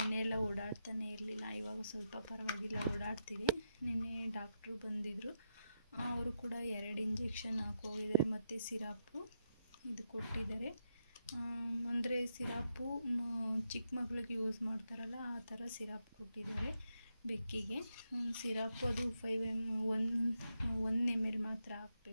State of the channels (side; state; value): both; inverted; correlation -0.82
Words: ಎಲ್ಲ ಓಡಾಡ್ತಾನೆ ಇರಲಿಲ್ಲ. ಇವಾಗ ಸ್ವಲ್ಪ ಪರವಾಗಿಲ್ಲ, ಓಡಾಡ್ತಿದೆ. ನಿನ್ನೆ ಡಾಕ್ಟ್ರು ಬಂದಿದ್ದರು. ಅವರು ಕೂಡ 2 ಇಂಜೆಕ್ಷನ್ ಹಾಕೋಗಿದ್ದಾರೆ ಮತ್ತು ಸಿರಪ್ಪು ಇದು ಕೊಟ್ಟಿದ್ದಾರೆ. ಅಂದರೆ ಸಿರಪ್ಪು ಚಿಕ್ಕ ಮಕ್ಳಿಗೆ ಯೂಸ್ ಮಾಡ್ತಾರಲ್ಲ ಆ ಥರ ಸಿರಪ್ ಕೊಟ್ಟಿದ್ದಾರೆ ಬೆಕ್ಕಿಗೆ. ಸಿರಪ್ಪು ಅದು 1 ml ಮಾತ್ರ